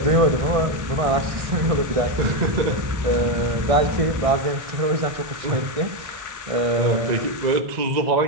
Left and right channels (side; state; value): left; late; 1.6 ms